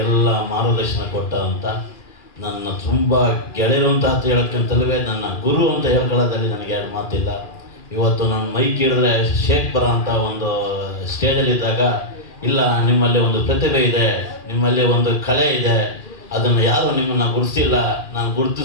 ಮಾರ್ಗದರ್ಶನ ಕೊಟ್ಟಂಥ ನನ್ನ ತುಂಬ ಗೆಳೆಯರು ಅಂತ ಹೇಳೋಕ್ಕಿಂತಲೇ ನನ್ನ ಗುರು ಅಂತ ಹೇಳ್ಕೊಳ್ಳೋದ್ರಲ್ಲಿ ನನಗೆ ಎರಡು ಮಾತಿಲ್ಲ. ಇವತ್ತು ನಾನು ಮೈಕ್ ಹಿಡಿದ್ರೆ ಶೇಕ್ ಬರೋ ಅಂಥ ಒಂದು ಸ್ಟೇಜಲ್ಲಿದ್ದಾಗ, ಇಲ್ಲ ನಿಮ್ಮಲ್ಲಿ ಒಂದು ಪ್ರತಿಭೆ ಇದೆ, ನಿಮ್ಮಲ್ಲಿ ಒಂದು ಕಲೆ ಇದೆ, ಅದನ್ನು ಯಾರು ನಿಮ್ಮನ್ನು ಗುರುತಿಸಿಲ್ಲ, ನಾನು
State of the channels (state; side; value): late; right; 2.4 ms